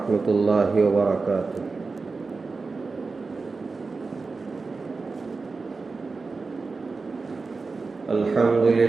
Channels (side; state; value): left; quieter; 4.1 dB